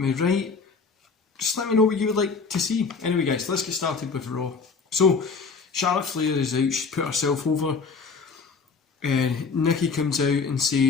write? Just let me know what you would like to see. Anyway guys, let's get started with Raw. So, Charlotte Flair is out, she's put herself over. Nikki comes out and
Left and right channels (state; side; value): quieter; right; 4.9 dB